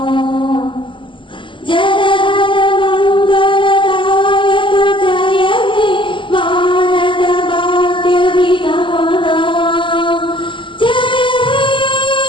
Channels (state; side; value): late; right; 0.24 ms